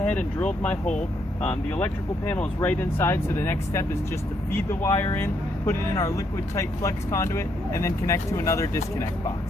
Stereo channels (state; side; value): normal; both; correlation 0.75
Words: and drilled my hole. The electrical panel is right inside, so the next step is just to feed the wire in, put it in our liquid tight flex conduit, and then connect to another disconnect box.